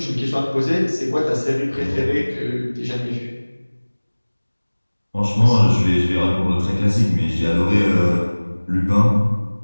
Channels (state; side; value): inverted; both; correlation -1.00